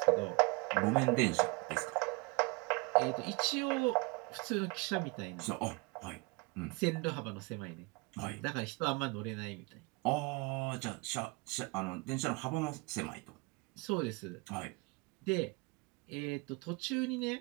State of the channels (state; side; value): quieter; left; 27.0 dB